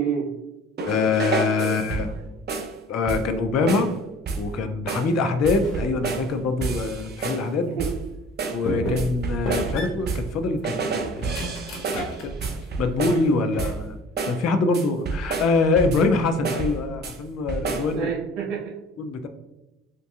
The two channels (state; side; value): normal; both; correlation 0.47